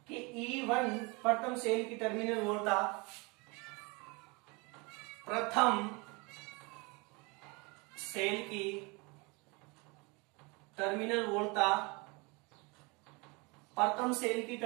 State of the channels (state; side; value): quieter; left; 28.1 dB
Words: कि E1 प्रथम सेल की टर्मिनल वोल्टता, प्रथम सेल की टर्मिनल वोल्टता, प्रथम सेल की